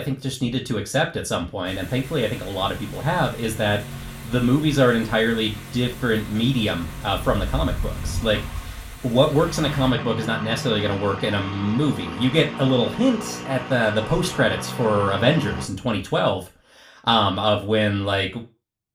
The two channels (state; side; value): identical; both; correlation 1.00